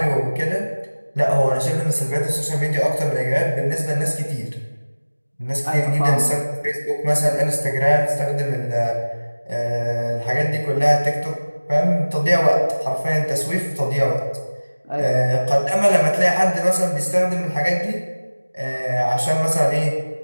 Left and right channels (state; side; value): inverted; both; correlation -1.00